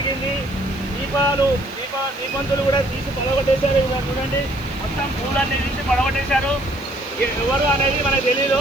దీపంతులు కూడా తీసి పడగొట్టేశారు. చూడండి మొత్తం పూలన్నీ తీసి పడగొట్టేశారు. ఎవరు అనేది మనకు తెలీదు.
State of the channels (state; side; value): noise; right; hiss, 25 dB below the sound